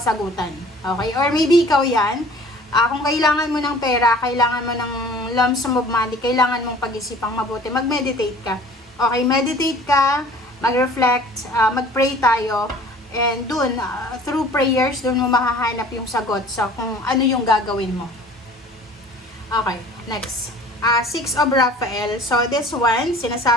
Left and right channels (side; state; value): both; normal; correlation 0.48